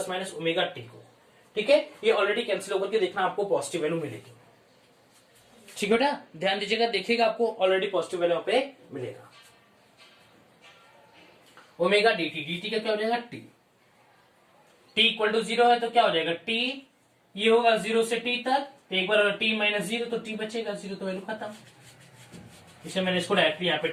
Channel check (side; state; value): both; identical; correlation 1.00